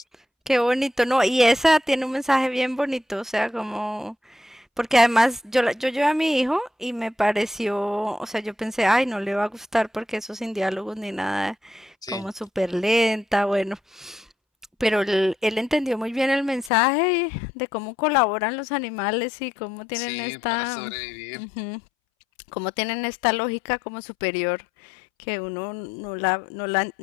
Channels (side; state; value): right; drops out; at 16.7 s